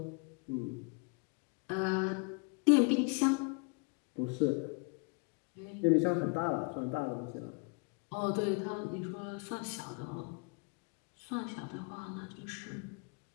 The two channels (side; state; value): right; quieter; 34.6 dB